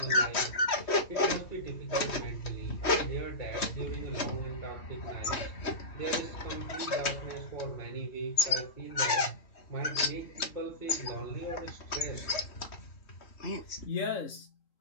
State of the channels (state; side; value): late; right; 3.1 ms